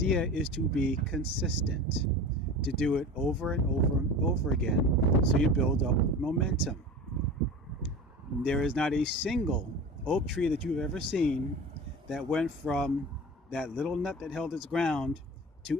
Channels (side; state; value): both; normal; correlation 0.33